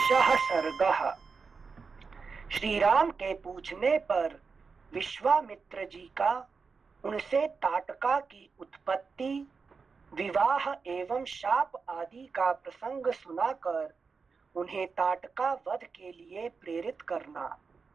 सर्गः। श्री राम के पूछने पर विश्वामित्र जी का उनसे ताटका की उत्पत्ति, विवाह एवं शाप आदि का प्रसंग सुनाकर उन्हें ताटका वध के लिए प्रेरित करना।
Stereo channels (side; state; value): left; quieter; 5.0 dB